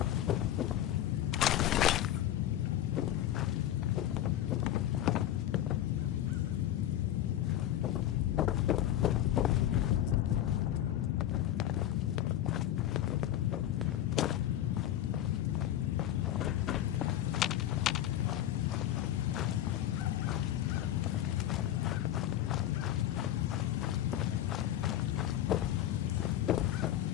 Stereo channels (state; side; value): quieter; right; 12.3 dB